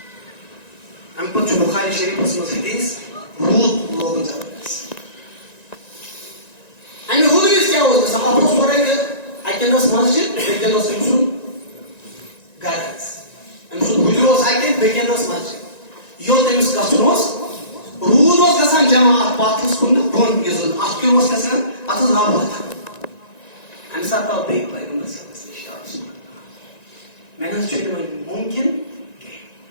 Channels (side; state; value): right; late; 1.9 ms